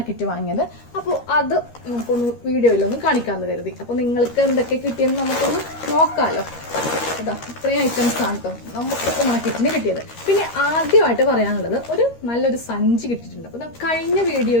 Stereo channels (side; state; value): right; late; 13 ms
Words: വാങ്ങിയത്. അപ്പോൾ അത് നമുക്കൊന്ന് വീഡിയോയിലൊന്ന് കാണിക്കാമെന്ന് കരുതി. അപ്പോൾ നിങ്ങൾക്ക് എന്തൊക്കെ കിട്ടിയെന്ന് നമുക്കൊന്ന് നോക്കാമല്ലോ. അതാ ഇത്രയും ഐറ്റംസ് ആണ് കേട്ടോ നമുക്ക് ഓണക്കിറ്റിന് കിട്ടിയത്. പിന്നെ ആദ്യമായിട്ട് പറയാനുള്ളത് നല്ലൊരു സഞ്ചി കിട്ടിയിട്ടുണ്ട്. അപ്പോൾ കഴിഞ്ഞ